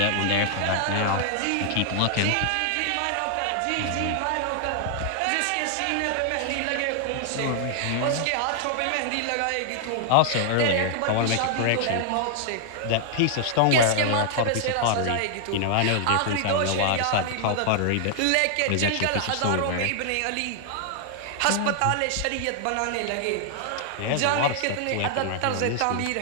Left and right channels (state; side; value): different; both; correlation -0.01